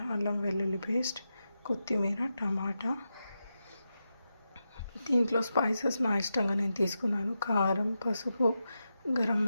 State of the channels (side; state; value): both; inverted; correlation -0.89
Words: అల్లం వెల్లుల్లి పేస్ట్, కొత్తిమీర, టమాటా. దీంట్లో స్పైసెస్ నా ఇష్టంగా నేను తీసుకున్నాను. కారం, పసుపు, గరం